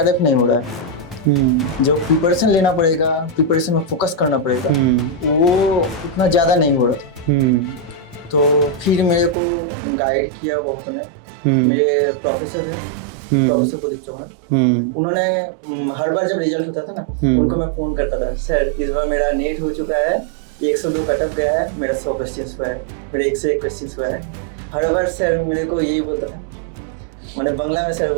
नहीं हो रहा है, जो प्रिपरेशन लेना पड़ेगा, प्रिपरेशन में फोकस करना पड़ेगा, वो उतना ज़्यादा नहीं हो रहा था। तो फिर मेरे को गाइड किया बहुत ने, मेरे प्रोफेसर है प्रोफेसर प्रदीप चौहान, उन्होंने हर बार जब रिजल्ट होता था ना उनको मैं फ़ोन करता था, सर इस बार मेरा नेट हो चुका है, 102 कटअप गया है, मेरा 100 क्वेश्चन हुआ है, मेरा 101 क्वेश्चन हुआ है। हर बार सर मेरे को यही बोलता था, मैंने बांग्ला में सर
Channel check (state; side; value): drops out; left; at 9.3 s